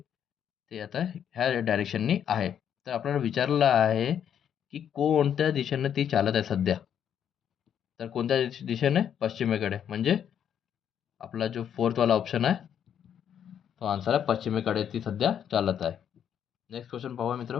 ते आता ह्या डायरेक्शननी आहे. तर आपल्याला विचारलं आहे की कोणत्या दिशेने ती चालत आहे सध्या? तर कोणत्या दिशेने? पश्चिमेकडे. म्हणजे आपला जो फोर्थवाला ऑप्शन आहे तो आन्सर आहे पश्चिमेकडे ती सध्या चालत आहे. नेक्स्ट क्वेश्चन पाहूया मित्र.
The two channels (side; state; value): right; quieter; 8.9 dB